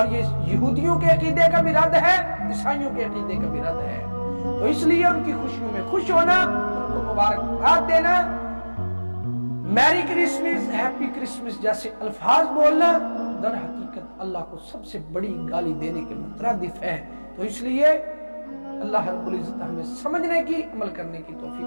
یہ یہودیوں کے عقیدے کا بھی رد ہے، عیسائیوں کے عقیدے کا بھی رد ہے۔ تو اس لیے ان کی خوشیوں میں خوش ہونا، ان کو مبارکباد دینا، میری کرسمس، ہیپی کرسمس جیسے الفاظ بولنا در حقیقت اللہ کو سب سے بڑی گالی دینے کے مترادف ہے۔ تو اس لیے اللہ رب العزت ہمیں سمجھنے کی، عمل کرنے کی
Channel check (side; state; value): both; inverted; correlation -1.00